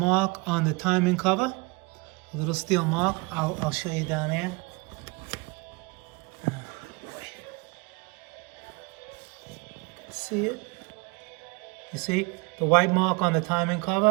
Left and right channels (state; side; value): quieter; left; 27.0 dB